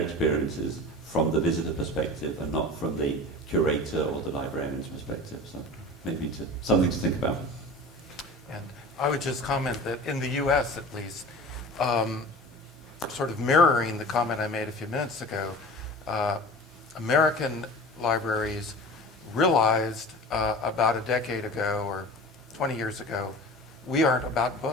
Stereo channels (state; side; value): normal; both; correlation 0.37